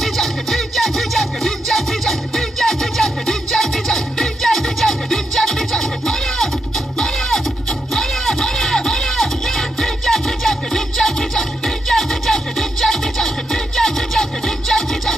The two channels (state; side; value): normal; both; correlation 0.83